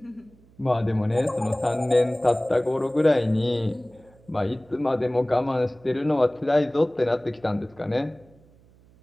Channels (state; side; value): noise; right; hum, 28 dB below the sound